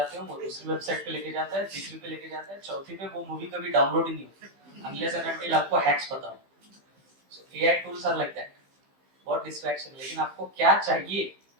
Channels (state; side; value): late; left; 15 ms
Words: हो, वो दूसरी वेबसाइट पे लेके जाता है, तीसरी पे लेके जाता है, चौथी पे वो मूवी कभी डाउनलोड ही नहीं होती अनलेस एंड अनटिल आपको हैक्स पता हो. So AI tools are like that. बहुत डिस्ट्रैक्शन. लेकिन आपको क्या चाहिए